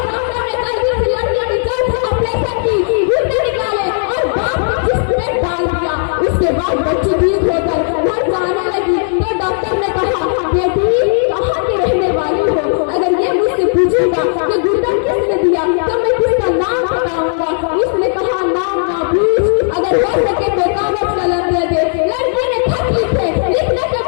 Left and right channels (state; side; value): silent; right; digital silence